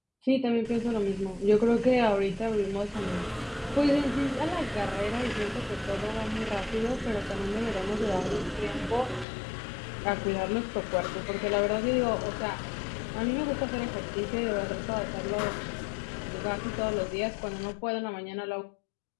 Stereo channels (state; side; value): drops out; right; at 9.2 s